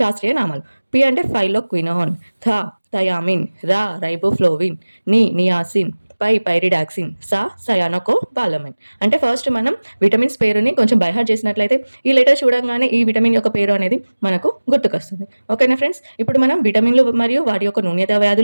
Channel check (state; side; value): inverted; both; correlation -1.00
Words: నామాలు. పి అంటే ఫైలోక్వినాన్, థ థయామిన్, రా రైబోఫ్లోవిన్, ని నియాసిన్, పై పైరిడాక్సిన్, సా సయానోకో బాలమైన్. అంటే ఫస్ట్ మనం విటమిన్స్ పేరుని కొంచెం బైహార్ట్ చేసినట్లయితే ఈ లెటర్ చూడంగానే ఈ విటమిన్ యొక్క పేరు అనేది మనకు గుర్తుకొస్తుంది. ఓకేనా ఫ్రెండ్స్? ఇప్పుడు మనం విటమిన్లు మరియు వాటి యొక్క న్యూనత